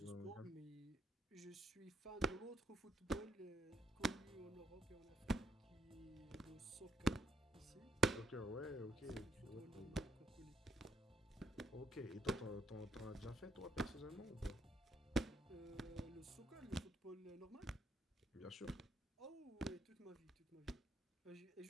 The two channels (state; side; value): normal; both; correlation 0.72